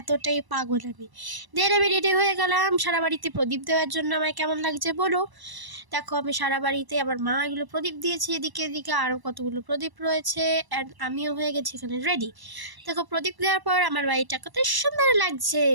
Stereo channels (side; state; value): left; late; 1.0 ms